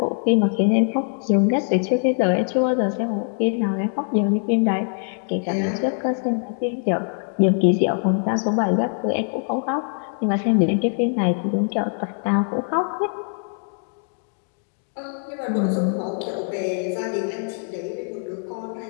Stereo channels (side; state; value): right; silent; 57 dB below the other